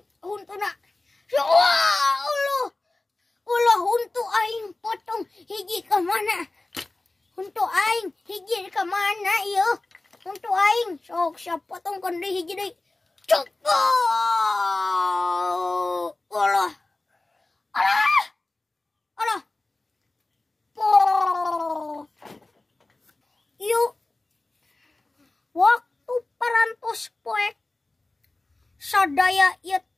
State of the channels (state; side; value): quieter; right; 3.0 dB